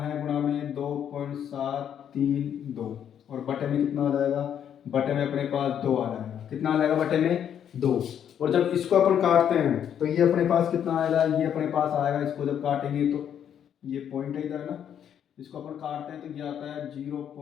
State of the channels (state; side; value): quieter; right; 9.1 dB